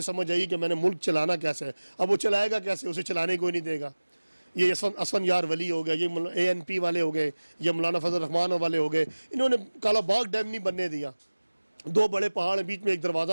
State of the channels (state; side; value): inverted; both; correlation -1.00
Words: سمجھ آئی کہ میں نے ملک چلانا کیسے ہے۔ اب وہ چلائے گا کیسے؟ اسے چلانے کوئی نہیں دے گا۔ یہ اسفن یار ولی ہو گیا، یہ ANP والے ہو گئے، یہ مولانا فضل الرحمان والے ہو گئے، انہوں نے کالا باغ ڈیم نہیں بننے دیا، 2 بڑے پہاڑ ہیں، بیچ میں ایک دروازہ